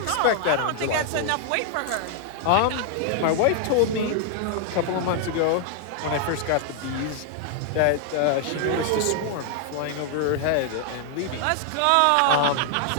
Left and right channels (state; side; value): different; both; correlation 0.00